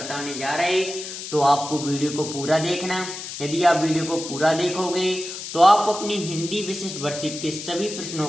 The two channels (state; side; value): noise; left; hiss, 9 dB below the sound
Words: जा रहे हैं, तो आपको वीडियो को पूरा देखना। यदि आप वीडियो को पूरा देखोगे तो आप अपनी हिंदी विशिष्ट वर्कशीट के सभी प्रश्नों